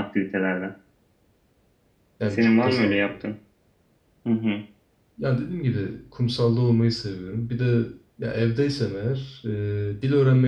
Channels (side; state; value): both; identical; correlation 1.00